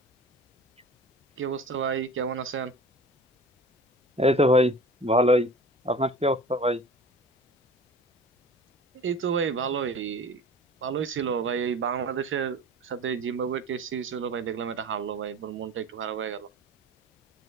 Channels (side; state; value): both; normal; correlation 0.40